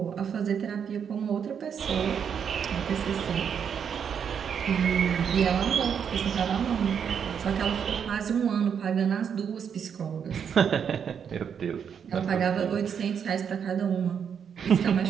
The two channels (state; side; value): quieter; left; 7.5 dB